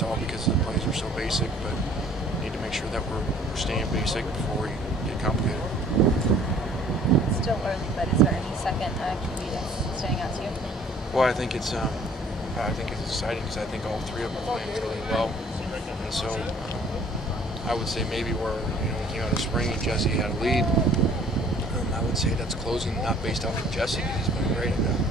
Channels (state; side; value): normal; both; correlation 0.55